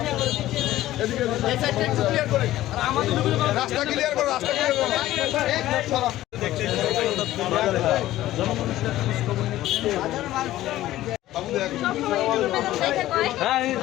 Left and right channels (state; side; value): quieter; right; 14.9 dB